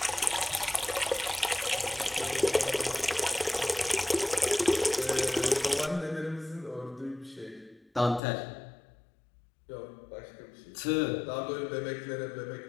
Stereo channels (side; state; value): right; drops out; at 8.2 s